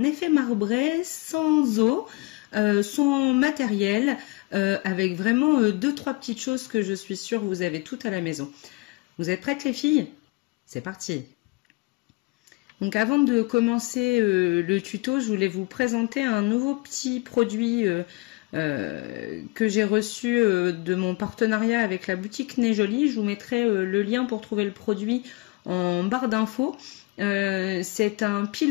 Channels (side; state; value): right; quieter; 24.7 dB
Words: effet marbré sans eau, sans matériel, avec vraiment deux trois petites choses que je suis sûre vous avez toutes à la maison. Vous êtes prêtes les filles? C'est parti. Donc avant de commencer le tuto, je voulais vous présenter un nouveau petit produit que j'ai reçu de mon partenariat avec la boutique Nez Jolie. Je vous mettrai le lien pour trouver le produit en barre d'infos. C'est un